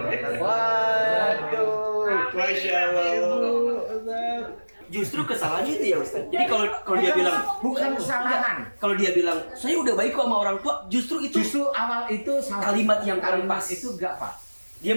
Waduh, Masya Allah. Justru kesalahannya itu ya Ustaz. Jadi kalau dia bilang bukan kesalahan. Kalau dia bilang saya udah baik kok sama orang tua, justru awal itu salah. Kalimat yang pas itu enggak Pak. Dia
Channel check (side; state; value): both; inverted; correlation -1.00